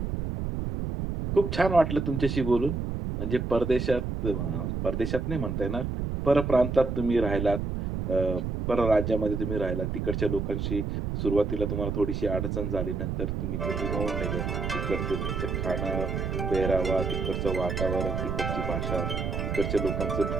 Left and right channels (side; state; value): right; noise; rumble, 2 dB below the sound